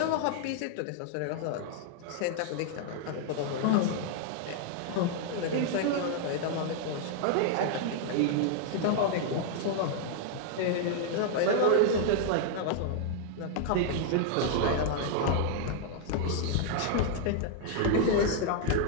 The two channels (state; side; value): different; both; correlation 0.00